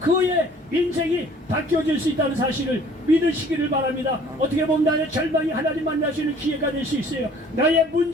그의 인생이 바뀌어질 수 있다는 사실을 믿으시기를 바랍니다. 어떻게 보면 나의 절망이 하나님 만날 수 있는 기회가 될 수 있어요. 나의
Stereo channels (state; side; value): normal; both; correlation 0.53